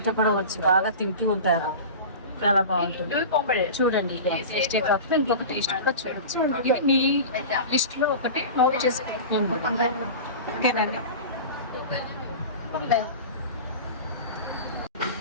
కూడా వచ్చి బాగా తింటూ ఉంటారు. చాలా బాగుంటుంది. చూడండి, టేస్టే కాకుండా ఇంకొక టేస్ట్ కూడా చూడొచ్చు. ఇది మీ లిస్ట్ లో ఒకటి నోట్ చేసుకుంటున్నాం. ఓకేనండి.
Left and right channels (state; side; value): inverted; both; correlation -0.32